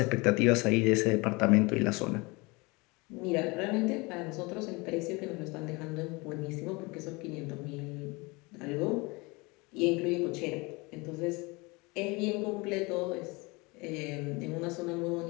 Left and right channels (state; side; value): quieter; right; 25.7 dB